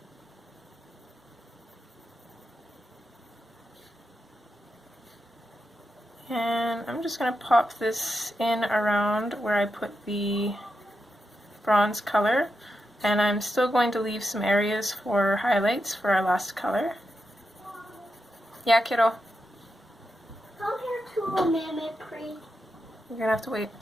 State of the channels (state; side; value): normal; both; correlation 0.87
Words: And I'm just going to pop this in around where I put the bronze color. And I'm still going to leave some areas for highlights for our last color. Yeah, kiddo? Come here to a minute, please. You're going to have to wait.